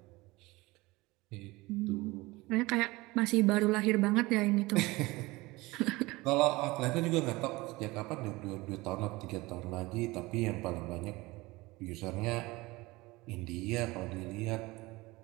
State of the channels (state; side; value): quieter; left; 21.6 dB